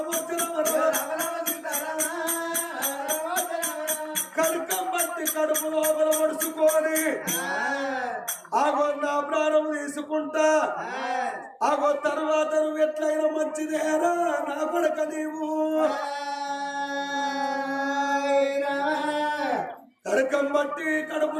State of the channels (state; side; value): identical; both; correlation 1.00